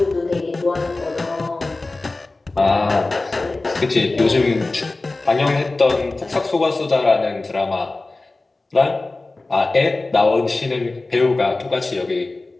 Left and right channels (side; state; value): right; quieter; 3.2 dB